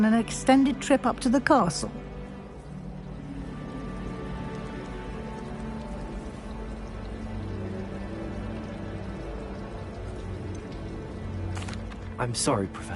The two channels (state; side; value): identical; both; correlation 1.00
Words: an extended trip up to the castle. I'm sorry,